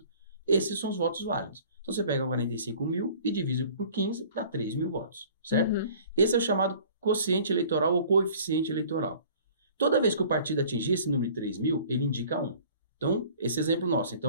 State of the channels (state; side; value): inverted; both; correlation -0.49